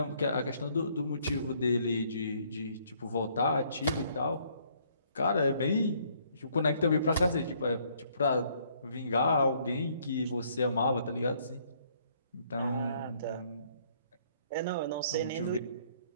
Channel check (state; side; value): inverted; both; correlation -0.65